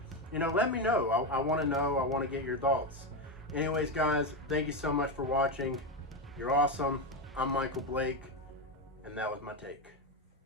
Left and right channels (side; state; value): both; normal; correlation 0.11